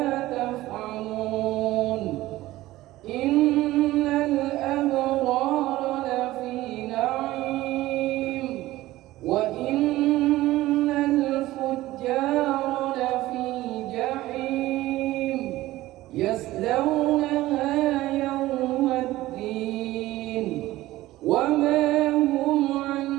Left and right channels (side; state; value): left; quieter; 16.8 dB